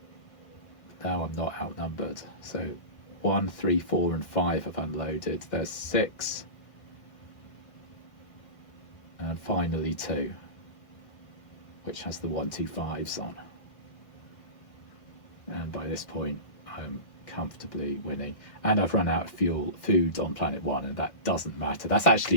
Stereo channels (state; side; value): late; right; 1.5 ms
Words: I'm not outnumbered. So 1, 3, 4 and 5 have unloaded. There's 6, and finally 2, which has the 125s on. And by this point I'm comfortably winning, and I've run out of food on planet 1, and that doesn't matter. That's